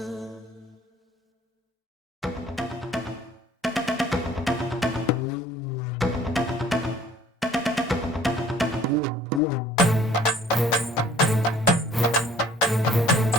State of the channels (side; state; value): both; normal; correlation 0.54